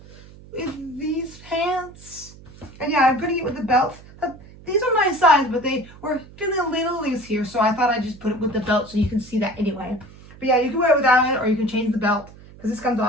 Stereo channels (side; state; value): right; noise; hum, 20 dB below the sound